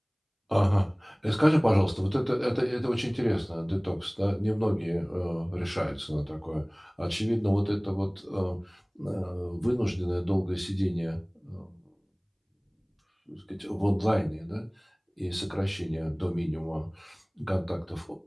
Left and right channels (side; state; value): both; identical; correlation 1.00